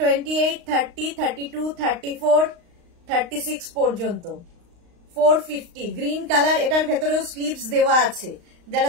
30, 32, 34, 36 পর্যন্ত 450। গ্রিন কালার, এটার ভেতরেও স্লিভস দেওয়া আছে,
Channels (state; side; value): late; left; 35 ms